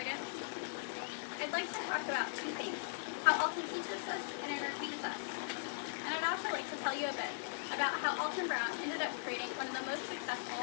I'd like to talk about two things: how Alton teaches us and entertains us. And I'd also like to tell you a bit about how Alton Brown ended up creating one of the most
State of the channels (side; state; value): right; silent; digital silence